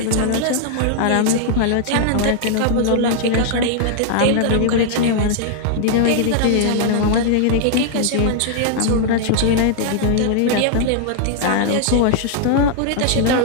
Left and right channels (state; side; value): different; both; correlation -0.01